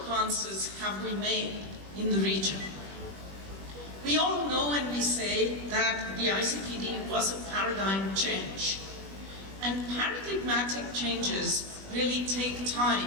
have we made in the region? We all know and we say that the ICPD was a paradigm change. And paradigmatic changes really take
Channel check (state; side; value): late; left; 21 ms